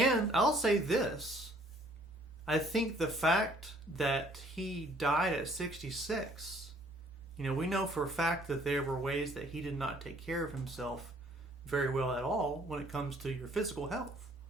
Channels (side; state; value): right; noise; hum, 30 dB below the sound